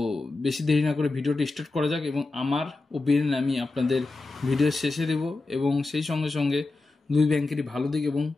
বেশি দেরি না করে ভিডিওটি স্টার্ট করা যাক এবং আমার ওপিনিয়ন আমি আপনাদের ভিডিওর শেষে দেব এবং সেই সঙ্গে সঙ্গে দুই ব্যাংকেরই ভালো দিক এবং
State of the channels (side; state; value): right; quieter; 3.4 dB